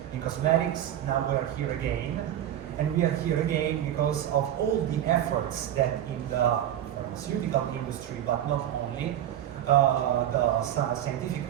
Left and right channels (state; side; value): quieter; left; 11.4 dB